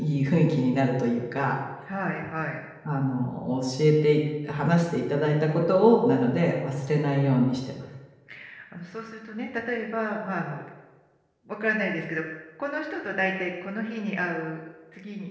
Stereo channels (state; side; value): identical; both; correlation 1.00